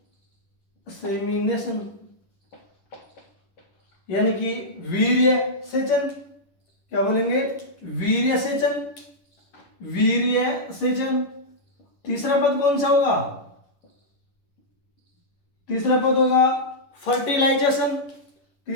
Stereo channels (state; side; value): late; right; 11 ms